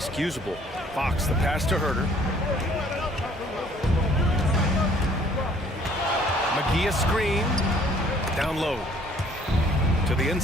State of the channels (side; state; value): both; normal; correlation 0.58